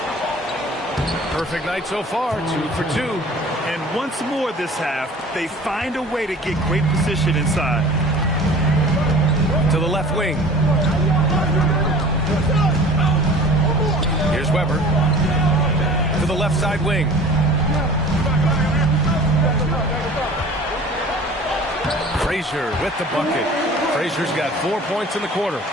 Perfect night so far, 2 for 2. And once more this half, they find a way to get great position inside. To the left wing. Here's Weber. To the left side wing. Frazier with the bucket. Frazier's got 4 points in the quarter.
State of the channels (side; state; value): both; normal; correlation 0.44